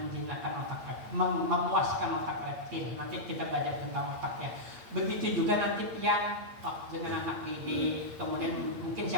memuaskan otak reptil. Nanti kita belajar tentang otak ya. Begitu juga nanti pian dengan anak didik, kemudian mungkin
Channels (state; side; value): late; left; 8.6 ms